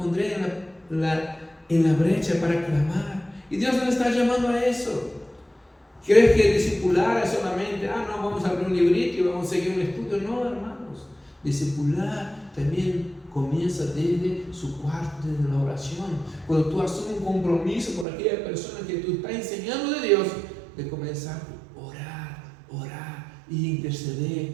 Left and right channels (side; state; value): left; drops out; at 18.1 s